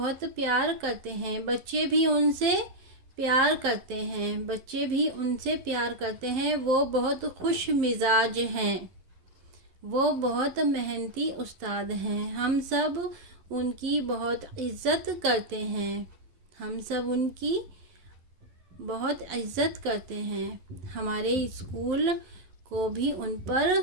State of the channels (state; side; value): late; left; 11 ms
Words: प्यार करते हैं। बच्चे भी उनसे प्यार करते हैं। बच्चे भी उनसे प्यार करते हैं। वो बहुत खुश मिजाज हैं। वो बहुत मेहनती उस्ताद हैं। हम सब उनकी बहुत इज्जत करते हैं। हम सब उनकी बहुत इज्जत करते हैं। हमारे स्कूल को भी उन